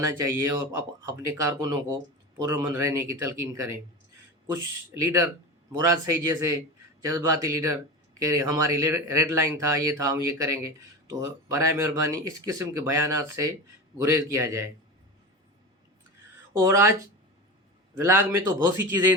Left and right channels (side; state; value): both; normal; correlation 0.26